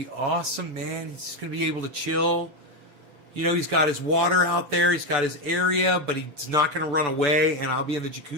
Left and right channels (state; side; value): late; left; 6.9 ms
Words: awesome, man. He's gonna be able to chill. You know, he's got his water out there. He's got his area, but he's not gonna run away. And I'll be in the